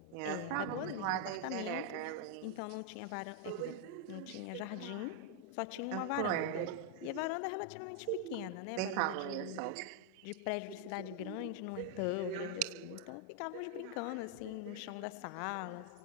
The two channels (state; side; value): different; both; correlation 0.00